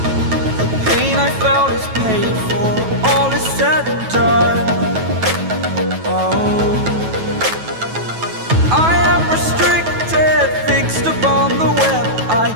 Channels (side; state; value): left; late; 9.2 ms